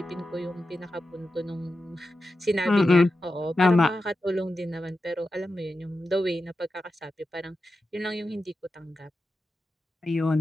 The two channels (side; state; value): both; normal; correlation 0.91